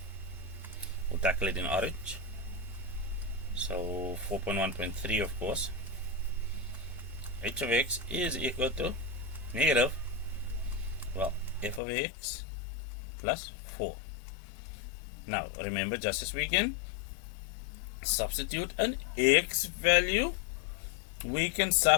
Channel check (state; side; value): drops out; right; at 11.8 s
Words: We'll tackle it in orange. So 4.1.3, of course. H of x is equal to negative, well, f of x plus 4. Now remember, just as we can substitute an x value, we can